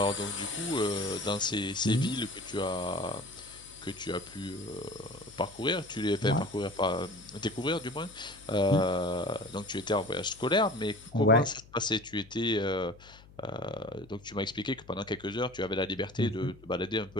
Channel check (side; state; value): left; noise; hum, 22 dB below the sound